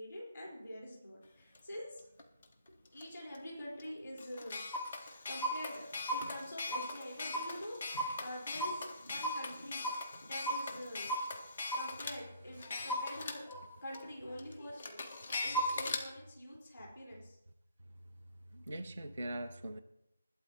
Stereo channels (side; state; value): both; inverted; correlation -0.56